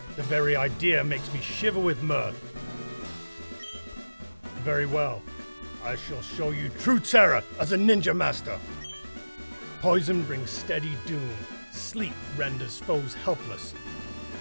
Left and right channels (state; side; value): inverted; both; correlation -1.00